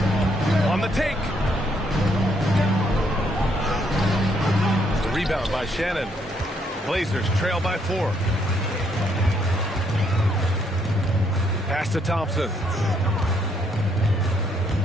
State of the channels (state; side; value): normal; both; correlation 0.71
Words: On the take. The rebound by Shannon. Blazers trail by 4. Pass to Thompson.